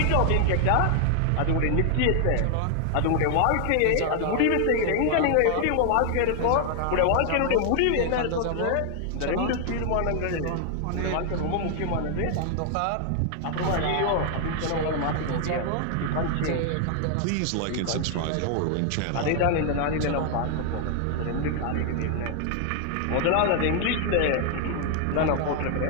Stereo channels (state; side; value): different; both; correlation 0.00